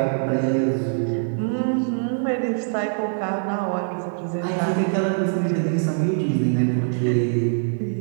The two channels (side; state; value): left; silent; digital silence